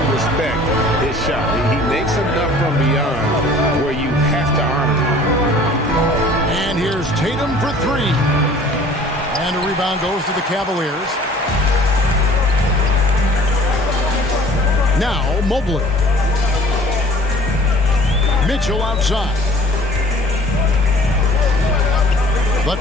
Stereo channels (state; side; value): normal; both; correlation 0.50